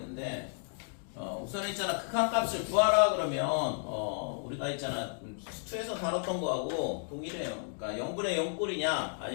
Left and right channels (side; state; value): right; silent; 56 dB below the other